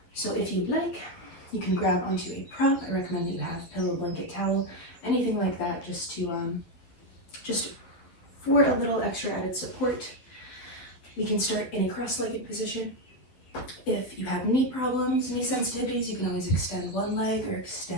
So if you'd like, you can grab onto a prop. I recommend that you have pillow, blanket, towel, anything like that, just for a little extra added support. We can start in a cross-legged position. If you have knee problems, knee sensitivities, you can always extend one leg or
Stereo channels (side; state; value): right; late; 11 ms